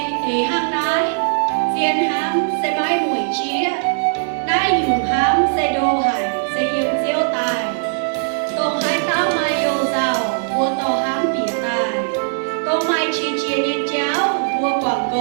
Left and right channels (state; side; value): silent; left; digital silence